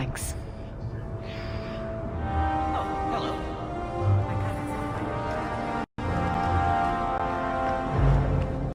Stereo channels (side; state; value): both; identical; correlation 1.00